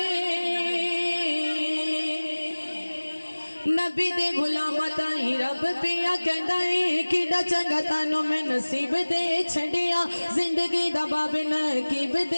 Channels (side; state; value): both; inverted; correlation -1.00